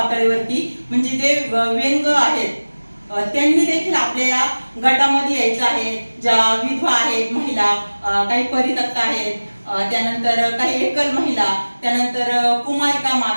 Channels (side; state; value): both; inverted; correlation -1.00